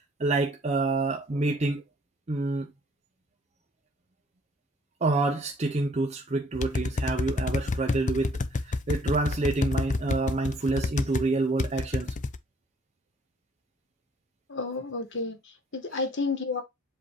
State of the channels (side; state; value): both; normal; correlation 0.61